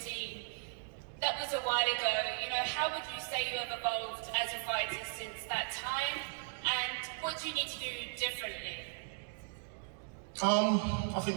That was a while ago. You know, how would you say you have evolved as a fighter since that time? And what do you need to do differently? I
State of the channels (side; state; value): left; silent; 53 dB below the other